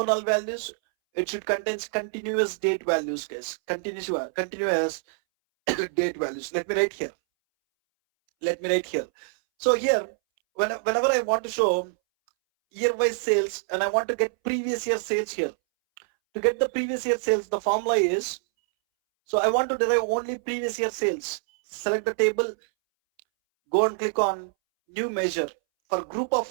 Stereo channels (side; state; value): left; silent; 61 dB below the other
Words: null values, it should contain continuous date values, guys. Continuous date values. Let me write here. Let me write here. So here, whenever I want to show year-wise sales and I want to get previous year sales here. To get the previous year sales, the formula is, so I want to derive only previous year sales. Select the table, go and click on new measure. For group of